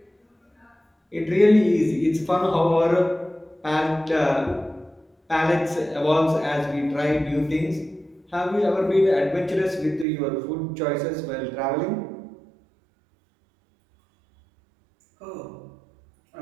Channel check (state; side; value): drops out; left; at 10.1 s